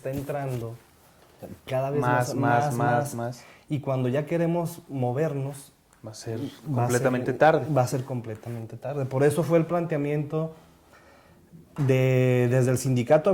entrando cada vez más. Y cuando ya queremos movernos, Va a ser completamente tarde. Va a ser completamente tarde. Por eso fue el planteamiento desde el sindicato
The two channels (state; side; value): identical; both; correlation 1.00